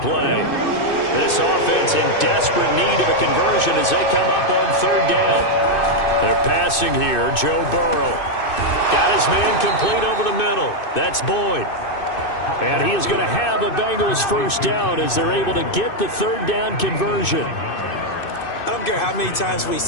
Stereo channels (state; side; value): late; right; 2.6 ms